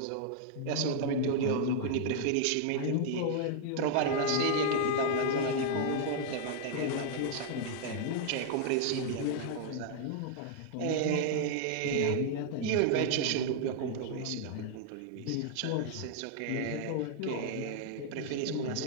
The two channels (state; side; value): different; both; correlation 0.00